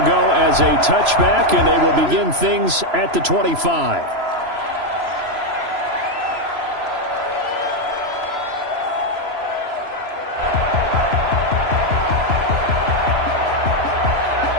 go as a touchback, and they will begin things at the 25.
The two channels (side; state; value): left; late; 3.0 ms